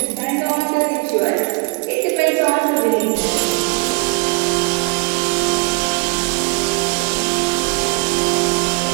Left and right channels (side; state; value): left; quieter; 31.0 dB